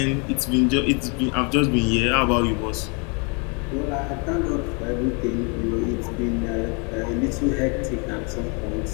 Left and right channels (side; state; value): right; quieter; 34.5 dB